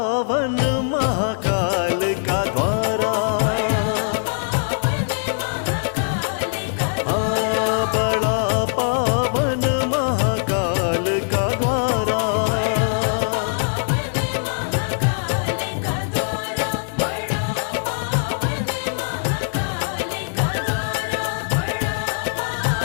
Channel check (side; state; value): right; silent; digital silence